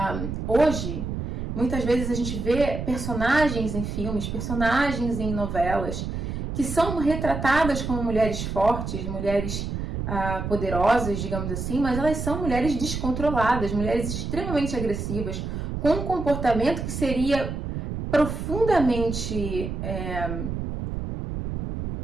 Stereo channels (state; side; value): noise; right; rumble, 4 dB below the sound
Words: hoje, muitas vezes a gente vê personagens em filmes, personagens em novelas, que são retratadas como mulheres fortes, mulheres poderosas, digamos assim, mas elas são mulheres descontroladas, mulheres extremamente agressivas, com um comportamento que seria profundamente,